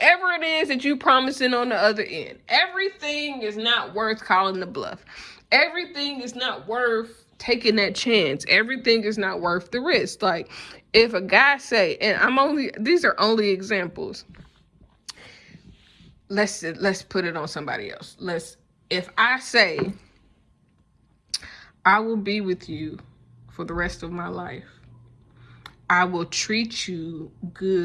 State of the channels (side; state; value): both; identical; correlation 1.00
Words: it is that you promising on the other end. Everything is not worth calling the bluff. Everything is not worth taking that chance. Everything is not worth the risk. Like, if a guy say, and these are only examples. Let's put it on somebody else. If I say, I will be with you for the rest of my life. I will treat you